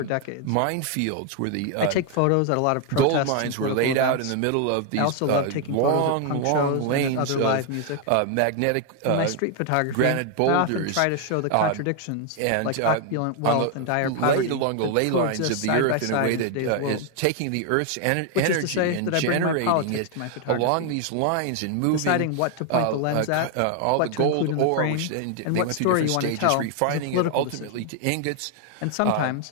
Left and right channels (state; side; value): different; both; correlation 0.00